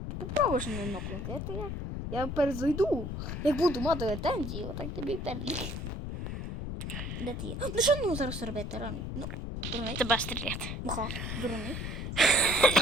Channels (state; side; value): noise; left; rumble, 5 dB below the sound